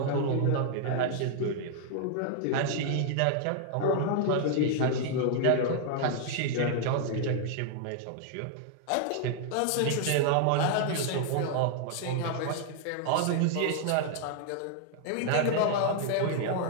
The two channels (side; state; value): both; different; correlation 0.00